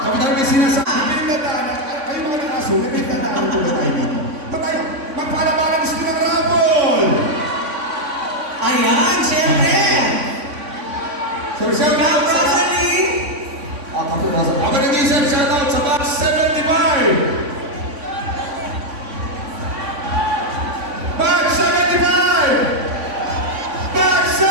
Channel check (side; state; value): left; late; 3.5 ms